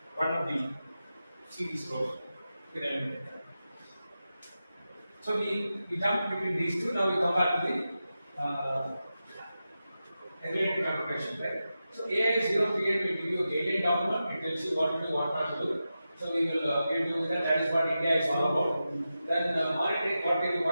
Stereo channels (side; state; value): both; inverted; correlation -0.92